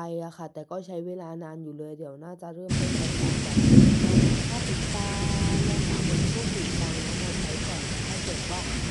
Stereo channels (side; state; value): both; identical; correlation 1.00